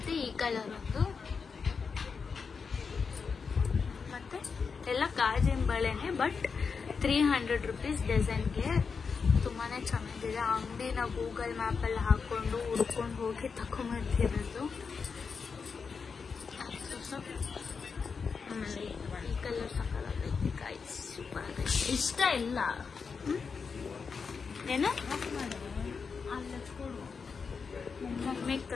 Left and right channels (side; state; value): right; quieter; 5.4 dB